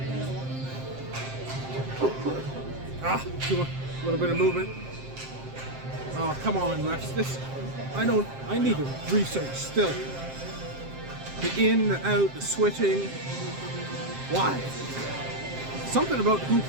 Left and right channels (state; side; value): late; left; 7.6 ms